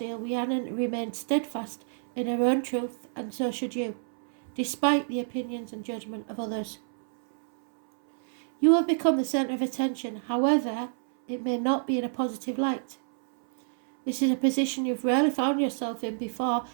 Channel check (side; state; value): left; silent; 59 dB below the other